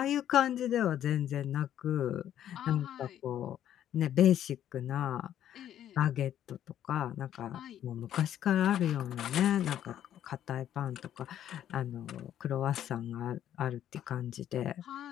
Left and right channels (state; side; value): quieter; right; 11.0 dB